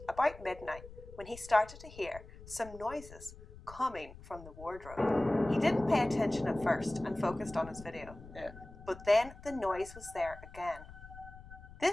about midnight, when he started to hear some noises coming from the wardrobe. He didn't pay attention at first and focused on his video. Yeah. But then the noise was there again.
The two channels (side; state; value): left; noise; rumble, 17 dB below the sound